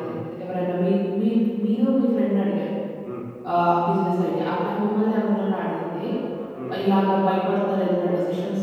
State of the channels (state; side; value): identical; both; correlation 1.00